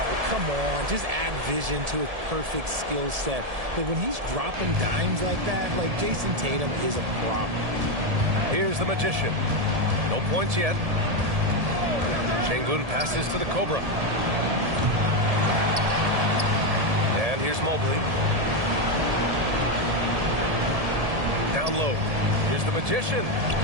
come on. Just add vision to his perfect skill set. But when he's dropping dimes like that, like Jason Tatum is a problem. Here's the Magician. No points yet. Şengün passes to the Cobra. And here's Mobley. Down low. Here's the Magician.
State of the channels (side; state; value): left; late; 1.7 ms